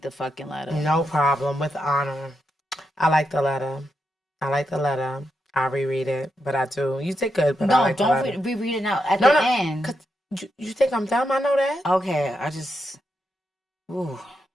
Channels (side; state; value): both; normal; correlation 0.84